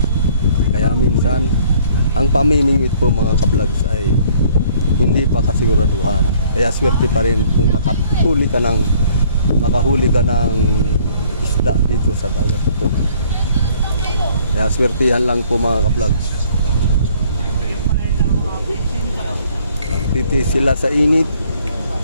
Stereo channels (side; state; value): both; inverted; correlation -0.58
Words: Kaya minsan ang pamimingwit po mga ka-vlogs ay hindi pa kasiguraduhan. Kaya swerte pa rin kung makahuli ka ng isda dito sa dagat ito. Kaya swertihan lang po mga ka-vlogs. Magtiti sila sa init.